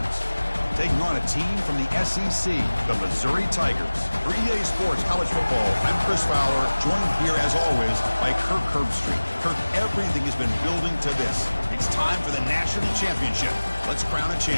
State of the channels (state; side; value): inverted; both; correlation -1.00